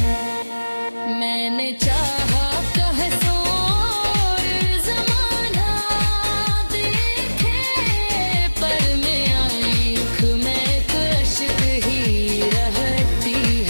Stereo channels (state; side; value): inverted; both; correlation -1.00